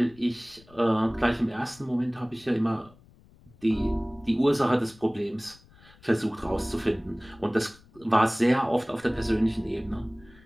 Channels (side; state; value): left; noise; rumble, 26 dB below the sound